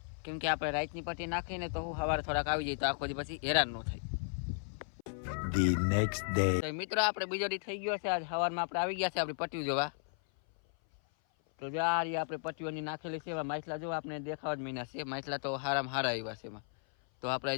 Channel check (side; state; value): right; silent; 54 dB below the other